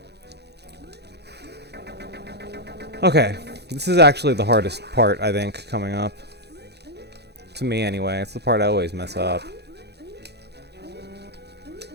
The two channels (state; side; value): late; left; 0.48 ms